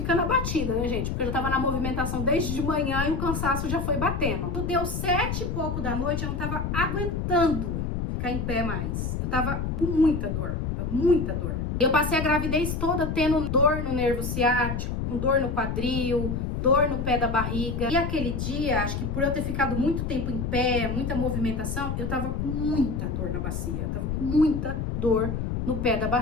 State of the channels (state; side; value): noise; left; rumble, 2 dB below the sound